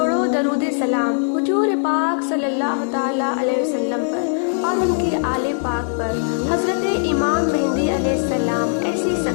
درود سلام حضور پاک صلی اللہ تعالیٰ علیہ وسلم پر اور ان کی آل پاک پر۔ حضرت امام مہدی علیہ السلام ایسی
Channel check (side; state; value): right; silent; digital silence